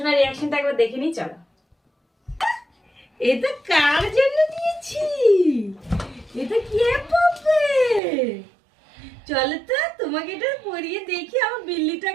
রিয়াকশনটা একবার দেখে নিই, চলো। এটা কার জন্য দিয়েছি? এটা কে পাবে? চলো তো তোমাকে এটা পরিয়ে দেখি আমার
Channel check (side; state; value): left; drops out; at 8.0 s